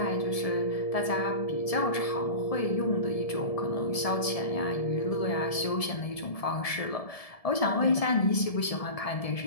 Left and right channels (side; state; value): right; late; 1.7 ms